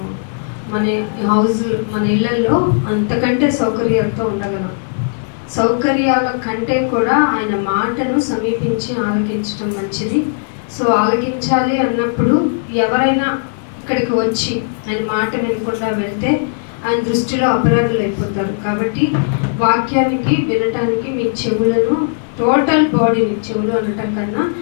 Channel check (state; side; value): silent; right; 63 dB below the other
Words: మన హౌస్ మన ఇళ్లలో అంతకంటే సౌకర్యాలతో ఉండగలం. సౌకర్యాల కంటే కూడా ఆయన మాటను సమీపించి ఆలకించడం మంచిది. సో ఆలకించాలి అన్నప్పుడు ఎవరైనా ఇక్కడికి వచ్చి ఆయన మాట వినకుండా వెళ్తే ఆయన దృష్టిలో అపరాధులు అయిపోతారు. కాబట్టి వాక్యానికి వినటానికి మీ చెవులను, టోటల్ బాడీని, చెవులు అనటం కన్నా